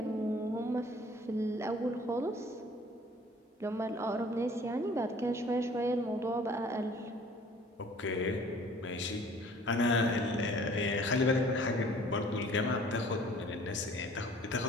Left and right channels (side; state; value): both; normal; correlation 0.52